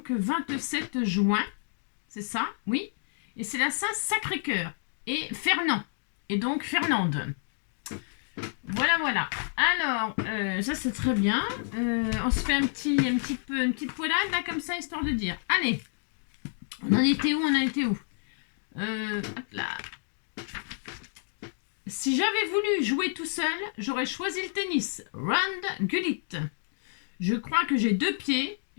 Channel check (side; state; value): right; silent; digital silence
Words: 27 juin, c'est ça, oui. Et c'est la Saint-Sacré-Cœur et Fernand, et donc Fernande. Voilà. Alors, ça c'est très bien. On se fait une petite poilade là comme ça, histoire de dire. Allez, on en était où hop là. Si j'avais voulu jouer tout seul, j'aurais choisi le tennis. Rand Gullit. Je crois que j'ai 2 pieds.